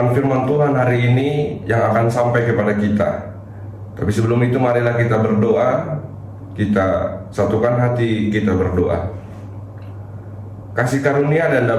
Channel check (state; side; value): identical; both; correlation 1.00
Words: firman Tuhan hari ini yang akan sampai kepada kita. Tapi sebelum itu marilah kita berdoa. Kita satukan hati, kita berdoa. Kasih karunia dan